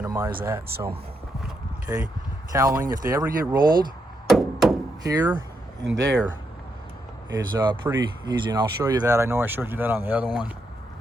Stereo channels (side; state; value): both; normal; correlation 0.81